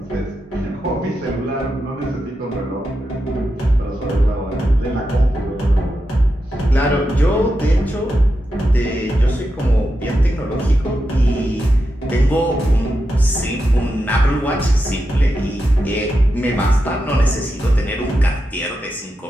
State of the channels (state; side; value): normal; both; correlation 0.88